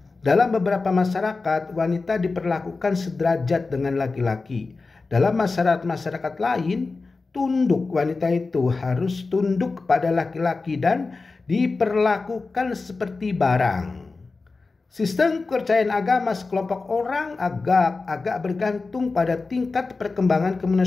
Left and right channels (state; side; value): quieter; right; 3.9 dB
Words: dalam beberapa masyarakat, wanita diperlakukan sederajat dengan laki-laki. Dalam masyarakat lain, tunduk, wanita itu harus tunduk kepada laki-laki dan diperlakukan seperti barang. Sistem kepercayaan agama sekelompok orang agak bergantung pada tingkat perkembangan